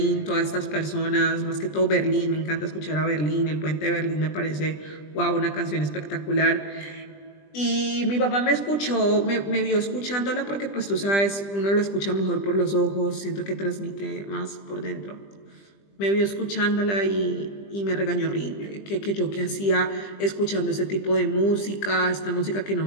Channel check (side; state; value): right; late; 20 ms